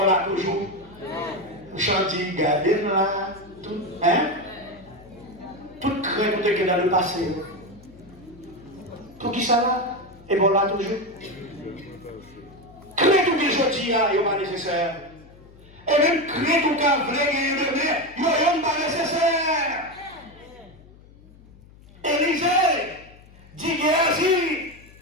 là toujours. Vous chantez, gardez là, tout, hein? Toute crainte qui est dans le passé. Tout qui ça là? Et bon là toujours. Crainte tout que je dis là, il n'est pas nécessaire. Et même crainte tout qu'il vrai gagner demain, il n'est pas nécessaire. Élisée dit Géasi.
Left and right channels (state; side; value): noise; left; hum, 23 dB below the sound